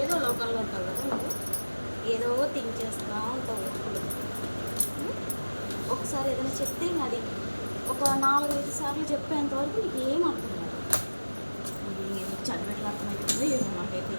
లోకల్లో ఉంటావు కదా, ఏదో థింక్ చేస్తూ ఉంటావు. ఒకసారి ఏదైనా చెప్తే ఇంకా అది ఒక 4-5 సార్లు చెప్పేంత వరకు నీకు ఏం అర్థం కాదు. అది చదివేట్లా అర్థమవుతుందో ఏమో నాకైతే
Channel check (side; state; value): both; inverted; correlation -1.00